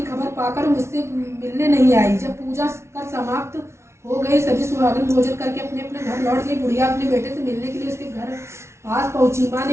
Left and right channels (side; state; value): left; late; 0.13 ms